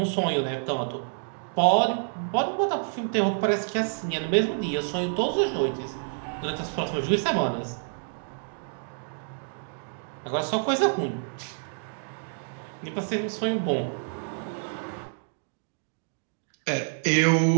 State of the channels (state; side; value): silent; left; 59 dB below the other